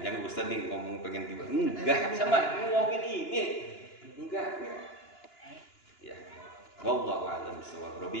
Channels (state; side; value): late; right; 2.9 ms